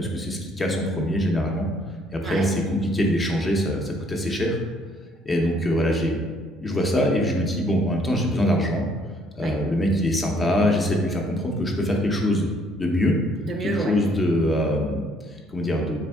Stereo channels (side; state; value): both; normal; correlation 0.64